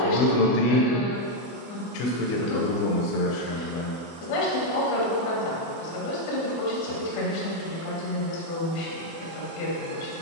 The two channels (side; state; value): right; late; 24 ms